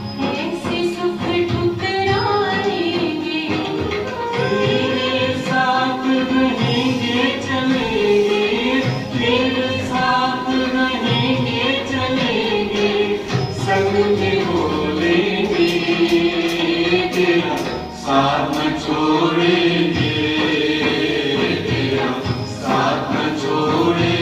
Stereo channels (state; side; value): identical; both; correlation 1.00